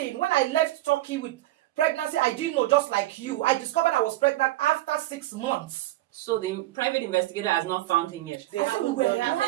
When I left Turkey with pregnancy, I didn't know, just like you. I discovered I was pregnant after 6 months. So the private investigator has not found him yet. They I said haven't we were done it.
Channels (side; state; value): left; quieter; 16.4 dB